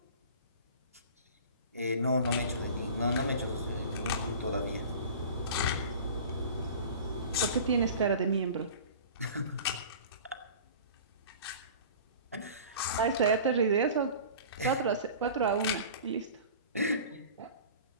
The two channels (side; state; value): both; inverted; correlation -0.40